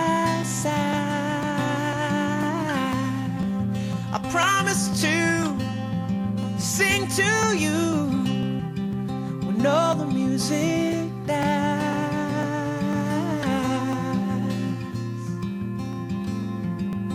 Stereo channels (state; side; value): identical; both; correlation 1.00